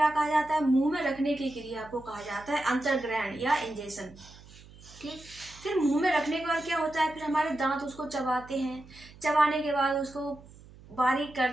कहा जाता है? मुंह में रखने की क्रिया को कहा जाता है अंतर्ग्रहण या इंजेशन। ठीक। फिर मुंह में रखने के बाद क्या होता है? फिर हमारे दांत उसको चबाते हैं, चबाने के बाद उसको बारीक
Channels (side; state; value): right; noise; hum, 21 dB below the sound